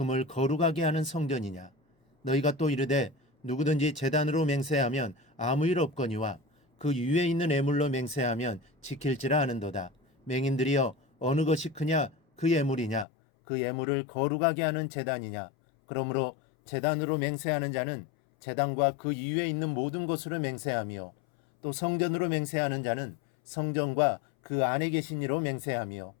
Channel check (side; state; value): right; drops out; at 13.1 s